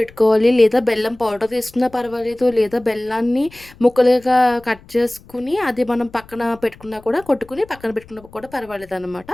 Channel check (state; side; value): noise; left; rumble, 24 dB below the sound